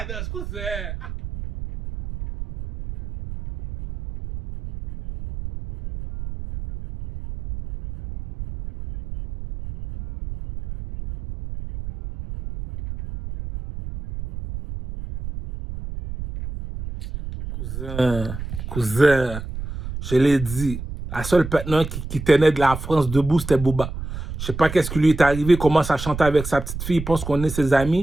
danse, cousin. Cousin, je l'ai dit, la seule partenaire qui tenait de la France debout, c'était Booba. Je sais pas qu'est-ce qui lui est arrivé, il commence à chanter avec sa petite fille, il pense qu'on est ses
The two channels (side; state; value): right; noise; rumble, 9 dB below the sound